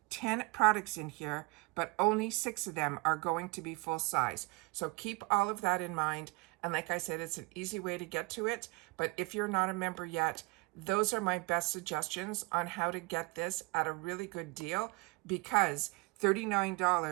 10 products in here, but only 6 of them are going to be full size. So keep all of that in mind. And like I said, it's an easy way to get to it. But if you're not a member yet, those are my best suggestions on how to get this at a really good deal, because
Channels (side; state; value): left; quieter; 26.0 dB